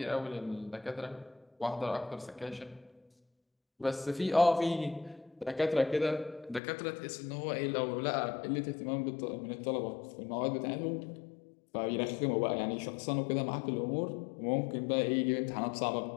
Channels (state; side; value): drops out; right; at 6.6 s